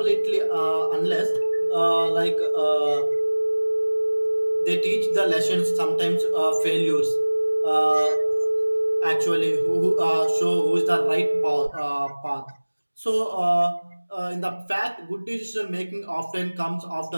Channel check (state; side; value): inverted; both; correlation -1.00